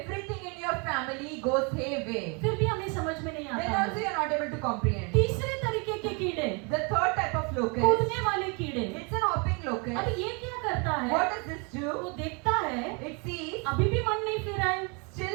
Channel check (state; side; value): quieter; left; 32.6 dB